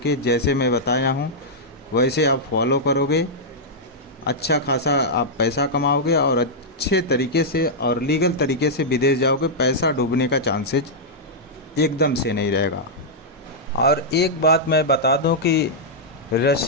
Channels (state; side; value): normal; both; correlation -0.08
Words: जैसे मैं बताया हूँ वैसे आप फॉलो करोगे। अच्छा खासा आप पैसा कमाओगे और अच्छे तरीके से और लीगल तरीके से विदेश जाओगे। पैसा डूबने का चांसेस एकदम से नहीं रहेगा। और एक बात मैं बता दूं कि